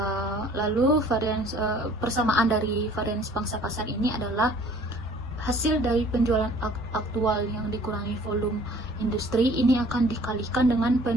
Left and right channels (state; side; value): normal; both; correlation 0.54